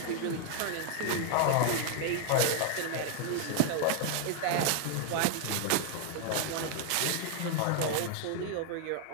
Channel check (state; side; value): different; both; correlation 0.00